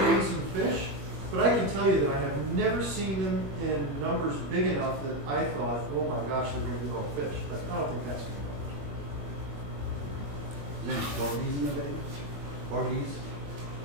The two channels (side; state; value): left; late; 21 ms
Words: eating some fish, but I can tell you that I have never seen them in numbers big enough that I thought, oh my gosh, they're going to eat all the fish. But I don't think that's going to Is there any porgies in the bay? Porgies?